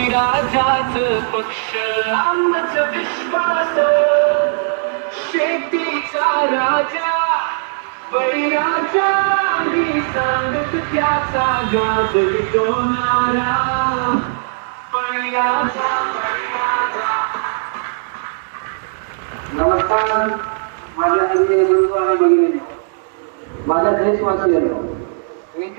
पक्ष आमचा विश्वास शेतीचा राजा बळीराजा मी सांगत त्याचा गाजर दोनारा बळीराजा नमस्कार माझ्या हस्ते गुरु आणि भगिनी माझ्या देशवासियांना मी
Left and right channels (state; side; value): silent; left; digital silence